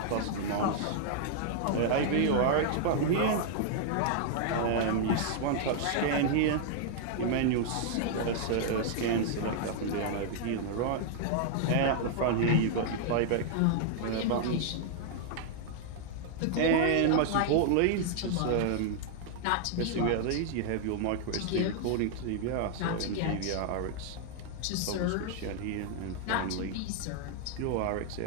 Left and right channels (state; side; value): different; both; correlation -0.01